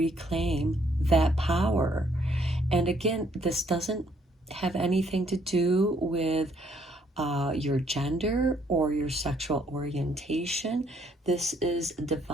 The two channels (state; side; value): normal; both; correlation 0.67